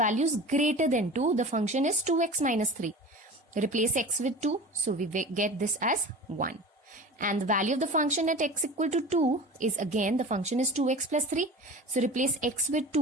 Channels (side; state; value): both; normal; correlation 0.36